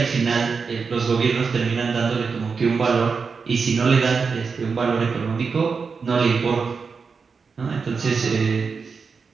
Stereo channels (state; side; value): quieter; left; 5.2 dB